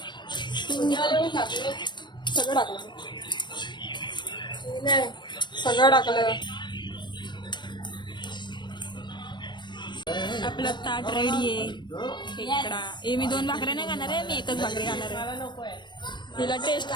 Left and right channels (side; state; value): right; late; 0.22 ms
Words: सगळं टाकलं. सगळं टाकलं. आपलं ताट रेडी आहे. खेकडा. मी 2 भाकऱ्या नाही खाणार आहे, मी एकच भाकरी खाणार आहे. तिला टेस्ट